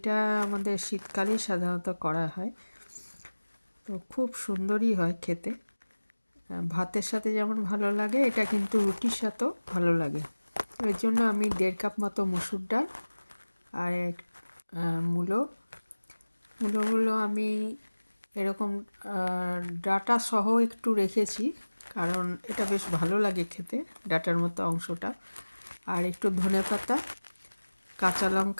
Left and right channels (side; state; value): both; inverted; correlation -1.00